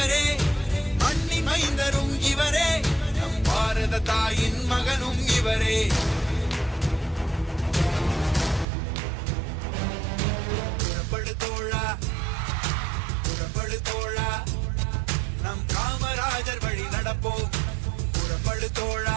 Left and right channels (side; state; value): left; drops out; at 8.7 s